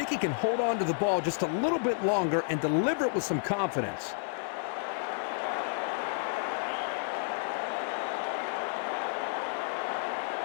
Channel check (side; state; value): right; silent; digital silence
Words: he can hold on to the ball just a little bit longer and deliver it with some confidence.